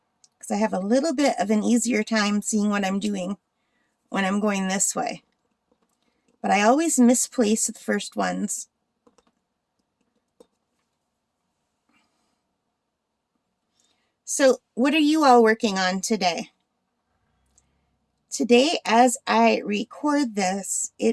because I have a little bit of an easier time seeing what I'm doing when I'm going this way. but I always misplace the first ones. So what are you all working on today? Today, as I record this,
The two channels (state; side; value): identical; both; correlation 1.00